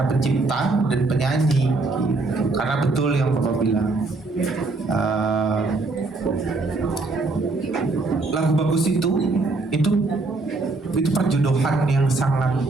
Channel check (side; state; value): left; quieter; 3.3 dB